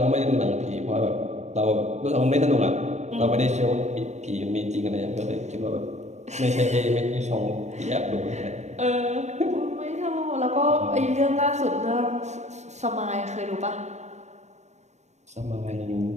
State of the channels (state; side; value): late; left; 0.33 ms